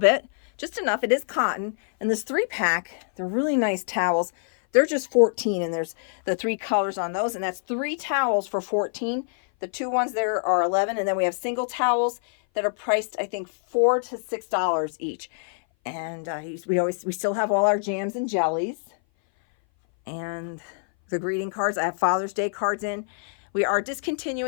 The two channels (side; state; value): right; silent; 58 dB below the other